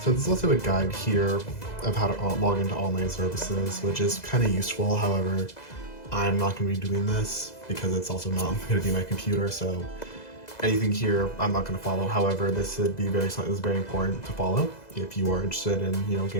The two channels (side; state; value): right; late; 2.0 ms